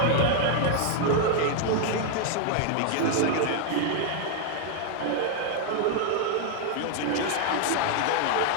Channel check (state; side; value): different; both; correlation 0.00